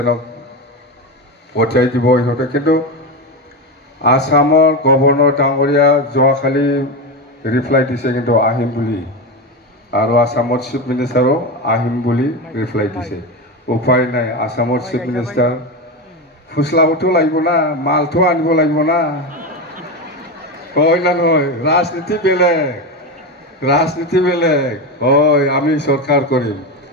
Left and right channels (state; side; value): normal; both; correlation 0.17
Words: পঠিয়াই দিব ইহঁতে। কিন্তু আসামৰ গভৰ্ণৰ ডাঙৰীয়া যোৱাকালি ৰিপ্লাই দিছে কিন্তু আহিম বুলি, আৰু আসামৰ চিফ মিনিষ্টাৰো আহিম বুলি ৰিপ্লাই দিছে। উপায় নাই, আসামৰ চিফ মিনিষ্টাৰ ফুচলাবতো লাগিব না, মালটো আনিব লাগিব না, হয় না নহয়? ৰাজনীতি বেলেগ, ৰাজনীতি বেলেগ। হয়, আমি চৰকাৰ কৰিম,